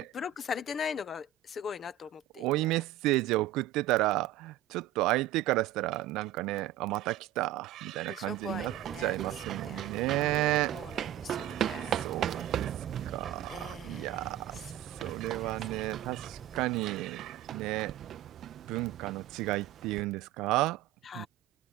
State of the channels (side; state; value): left; quieter; 11.5 dB